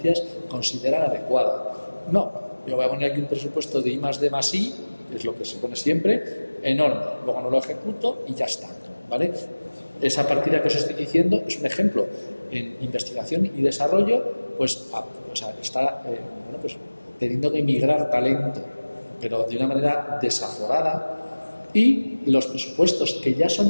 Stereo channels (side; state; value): both; inverted; correlation -1.00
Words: considera adecuada. No, yo voy a poner aquí un presupuesto de I+D+I, que es lo que se pone siempre, enorme. Luego no lo ejecuto y ya está, ¿vale? Esa partida que os estoy diciendo es un ejemplo. En investigación y desarrollo, pues está pues, teniendo que migrar talento, pero de una manera desaforada. Y los presupuestos que ya